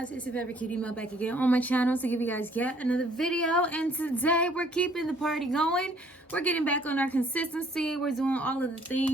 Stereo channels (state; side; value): normal; both; correlation 0.61